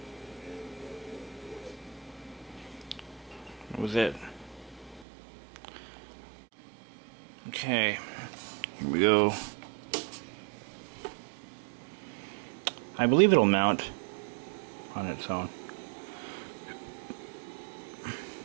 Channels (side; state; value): left; drops out; at 5.1 s